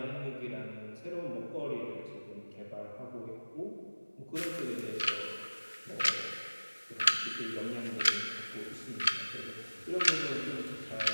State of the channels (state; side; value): inverted; both; correlation -1.00